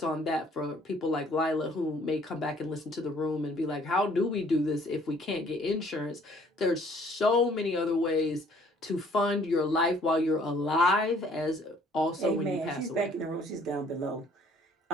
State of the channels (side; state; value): both; normal; correlation 0.59